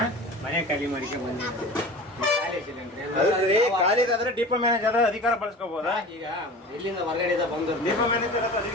ಮನೆ ಖಾಲಿ ಮಾಡಿಕೆ ಬಂದಿದ್ದೀವಿ. ಖಾಲಿದಾದ್ರೆ ಡಿಪೋ ಮ್ಯಾನೇಜರ್ ಅಧಿಕಾರ ಬಳಸ್ಕೋಬಹುದಾ? ಈಗ ಇಲ್ಲಿಂದ ಹೊರಗಡೆ ಬಂದು ಡಿಪೋ ಮ್ಯಾನೇಜರ್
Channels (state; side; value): normal; both; correlation 0.36